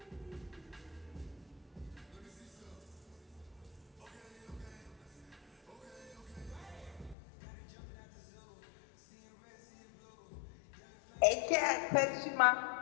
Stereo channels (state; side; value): drops out; right; at 7.2 s